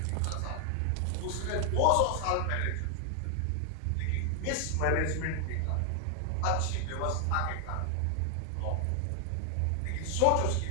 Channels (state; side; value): different; both; correlation 0.00